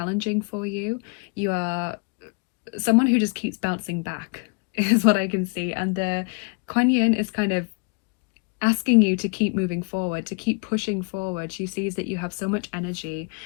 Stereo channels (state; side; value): quieter; right; 34.3 dB